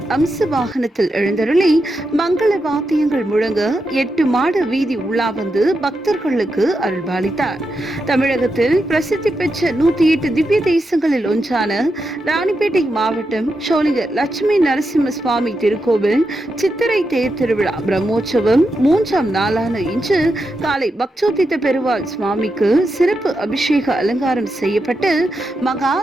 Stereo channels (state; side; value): normal; both; correlation 0.86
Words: அம்ச வாகனத்தில் எழுந்தருளி மங்கள வாத்தியங்கள் முழங்க 8 மாட வீதி உலா வந்து பக்தர்களுக்கு அருள்பாலித்தார். தமிழகத்தில் பிரசித்தி பெற்ற 108 திவ்ய தேசங்களில் ஒன்றான ராணிப்பேட்டை மாவட்டம் ஷோலிங்கர் லட்சுமி நரசிம்ம சுவாமி திருக்கோவில் சித்திரை தேர் திருவிழா பிரம்மோற்சவம் 3ஆம் நாளான இன்று காலை பக்தோத்தித பெருமாள் சுவாமிக்கு சிறப்பு அபிஷேக அலங்காரம் செய்யப்பட்டு மகா